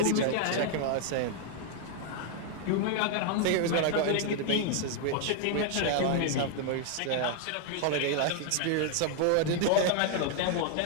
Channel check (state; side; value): different; both; correlation 0.00